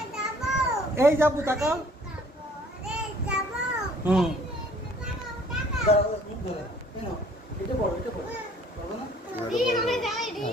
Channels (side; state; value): both; normal; correlation 0.56